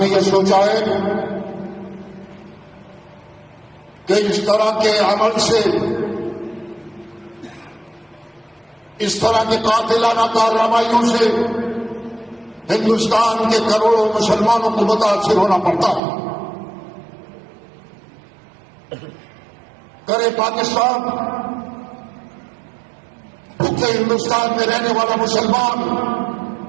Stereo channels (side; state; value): left; drops out; at 16.0 s